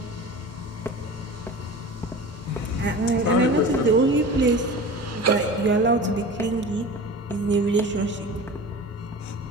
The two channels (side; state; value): both; normal; correlation 0.35